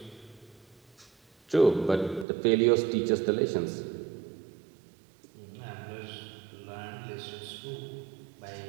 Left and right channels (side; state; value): left; drops out; at 2.2 s